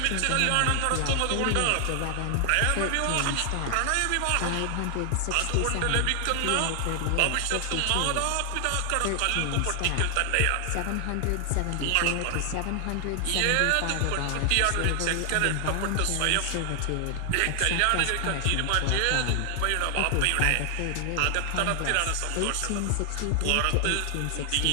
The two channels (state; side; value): different; both; correlation 0.00